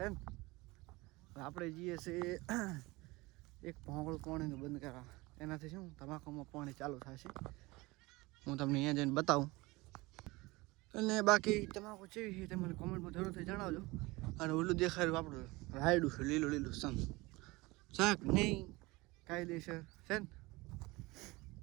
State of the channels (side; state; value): left; quieter; 22.3 dB